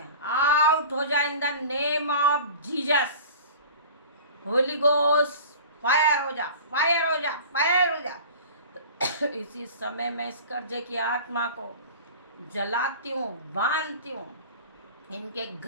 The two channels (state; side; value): inverted; both; correlation -0.39